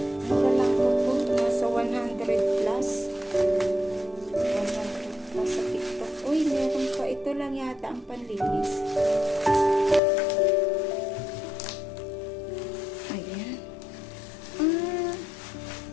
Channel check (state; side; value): drops out; right; at 10.0 s